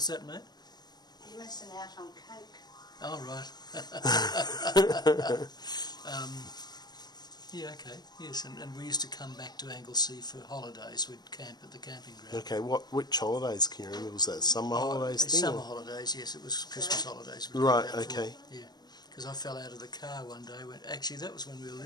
that, mate? You're missing out on coke. Oh, right. Yeah, okay, yes, and we used to come back to Anglesey for holidays. We'd camp at the camping ground. Okay, which holidays can you remember? Was that summer holidays thing? Summer holidays, yes, it was Christmas holidays. Right, okay. Yeah, because I fell out of the car one day. Actually, that was when we were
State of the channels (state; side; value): late; right; 0.20 ms